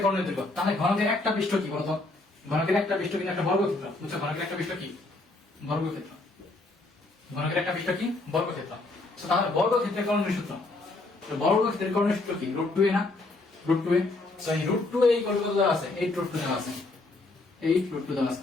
কর্ণের দৈর্ঘ্য, তাহলে ঘনকের একটা পৃষ্ঠ কি বলতো? ঘনকের একটা পৃষ্ঠ কিন্তু একটা বর্গক্ষেত্র, বুঝছো? ঘনকের একটা পৃষ্ঠ কি? বর্গক্ষেত্র। ঘনকের একটা পৃষ্ঠ কি? বর্গক্ষেত্র। সো তাহলে বর্গক্ষেত্রের কর্ণের সূত্র, তো বর্গক্ষেত্রের কর্ণের সূত্র কি? √2a না? √2a। সো এই √2a এই কত দেওয়া আছে? 8√2 দেওয়া আছে, 8√2 দেওয়া আছে।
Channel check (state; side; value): quieter; right; 3.1 dB